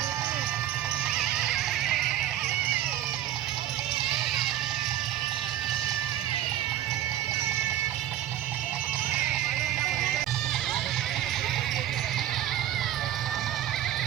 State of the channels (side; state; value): left; quieter; 12.1 dB